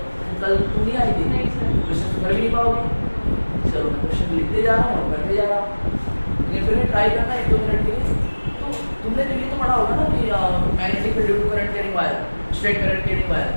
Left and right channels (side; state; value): both; inverted; correlation -1.00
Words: कल तुम नहीं आई थी, क्वेश्चन कर भी नहीं पाओगे। चलो मैं क्वेश्चन लिखते जा रहा हूँ और करते जा रहा हूँ, लेकिन फिर ट्राई करना 1-2 मिनट के लिए। तो तुमने तो ये तो पढ़ा होगा ना कि magnetic field due to current carrying wire, straight current carrying wire,